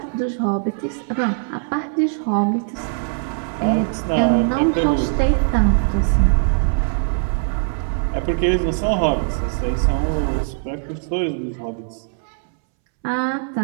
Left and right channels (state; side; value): silent; left; 65 dB below the other